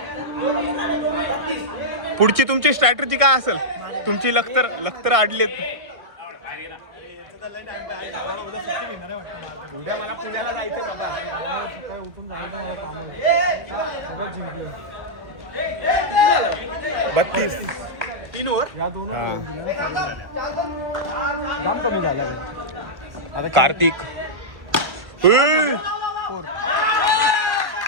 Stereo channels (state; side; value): late; left; 1.5 ms